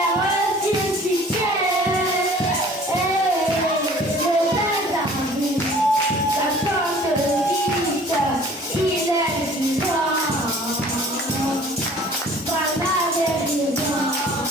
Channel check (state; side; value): normal; both; correlation 0.50